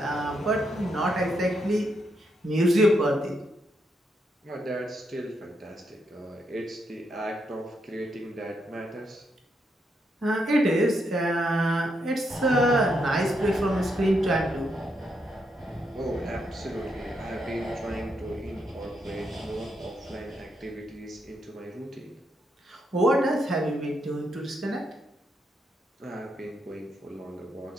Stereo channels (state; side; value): normal; both; correlation 0.80